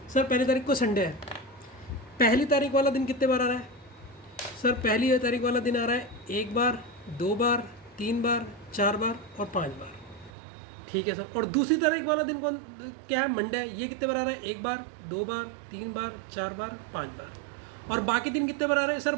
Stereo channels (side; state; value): left; drops out; at 10.3 s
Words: सर? पहली तारीख को संडे है। पहली तारीख वाला दिन कितने बार आ रहा है सर? पहली तारीख वाला दिन आ रहा है 1 बार, 2 बार, 3 बार, 4 बार और 5 बार। ठीक है सर। और दूसरी तारीख वाला दिन कौन क्या है? मंडे है। ये कितने बार आ रहा है? 1 बार, 2 बार, 3 बार, 4 बार, 5 बार। और बाकी दिन कितने बार आ रहे हैं सर?